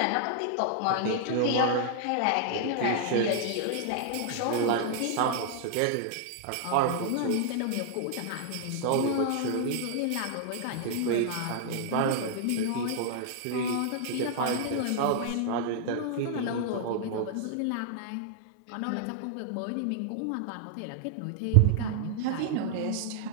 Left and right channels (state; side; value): different; both; correlation -0.01